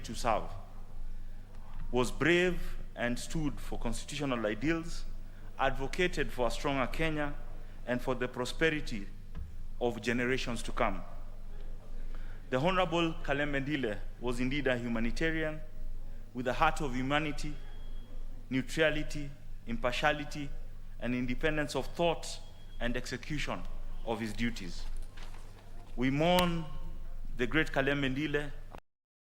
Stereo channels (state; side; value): identical; both; correlation 1.00